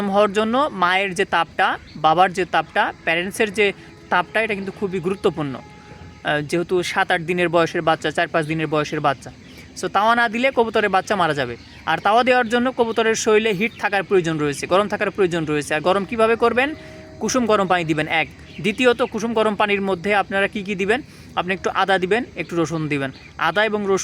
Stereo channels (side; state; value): both; identical; correlation 1.00